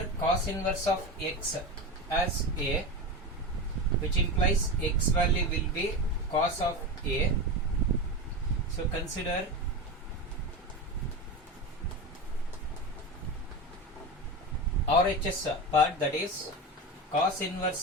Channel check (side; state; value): both; normal; correlation 0.22